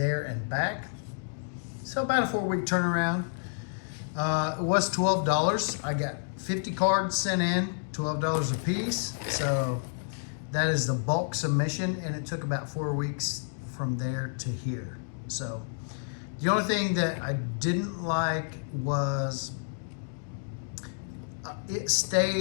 and back. So about a 4-week turnaround. It was $12. I got 50 cards sent in, $12 a piece. So that is the bulk submission, and it took about 4 weeks from there to here. So the only thing that I didn't like was it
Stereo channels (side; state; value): right; silent; digital silence